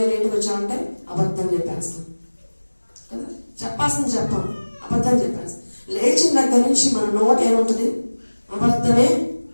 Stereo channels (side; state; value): both; inverted; correlation -1.00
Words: లేట్కి వచ్చామంటే అబద్ధం చెప్పేస్తాం. కదా, చెప్పాల్సింది చెప్పాం, అబద్ధం చెప్పాల్సి. లేచిన దగ్గర నుంచి మన నోట ఏముంటుంది? అబద్ధమే